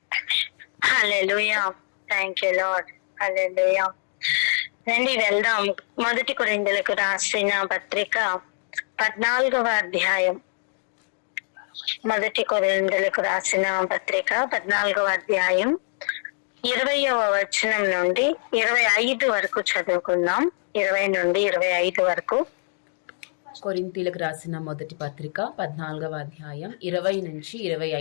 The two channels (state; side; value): silent; right; 62 dB below the other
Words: Hallelujah. Thank you, Lord. Hallelujah. రండి వెళ్దాం. 1 కొరింథీయులకు రాసిన పత్రిక 14వ అధ్యాయం. 1 కొరింథీయులకు రాసిన పత్రిక 14వ అధ్యాయం 20వ వచనం నుండి 25 వరకు చదువుకుందాం. 20 నుండి 25 వరకు. కొరింథీయులకు రాసిన మొదటి పత్రిక 14వ అధ్యాయం 20 నుంచి